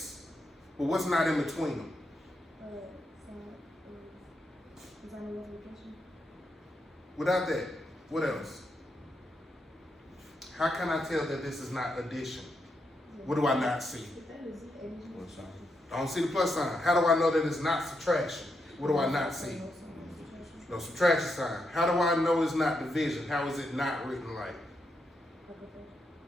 But what's not in between them? Without that, what else? How can I tell that this is not addition? What do I not see? I don't see the plus sign. How do I know that it's not subtraction? What do I not see? No subtraction sign. How do I know it's not division? How is it not written like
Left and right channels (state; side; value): normal; both; correlation 0.82